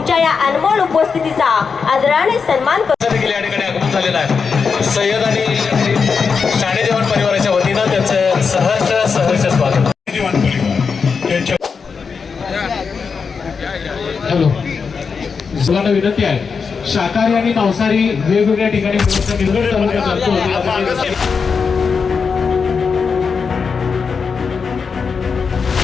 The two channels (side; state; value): right; quieter; 5.5 dB